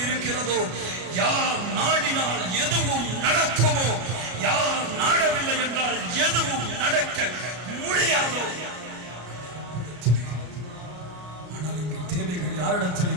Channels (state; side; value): late; left; 33 ms